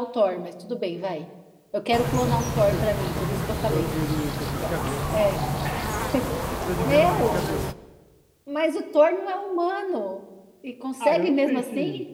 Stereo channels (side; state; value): both; identical; correlation 1.00